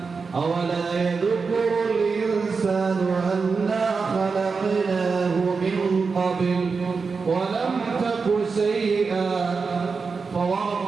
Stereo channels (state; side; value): quieter; left; 4.8 dB